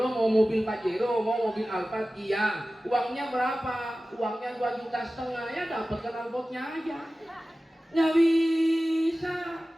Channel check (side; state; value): both; normal; correlation 0.96